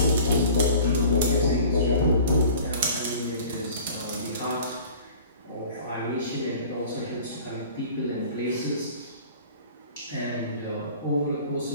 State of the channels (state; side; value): inverted; both; correlation -0.45